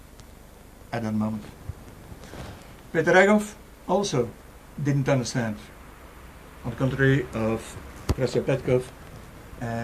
at that moment. Peter Ragov also didn't understand, on the contrary of Krøstьo Petkov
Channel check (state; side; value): identical; both; correlation 1.00